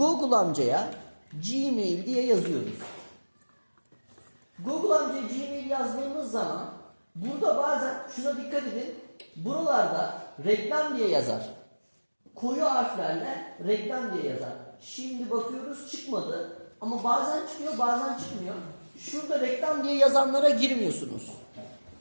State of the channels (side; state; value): both; inverted; correlation -1.00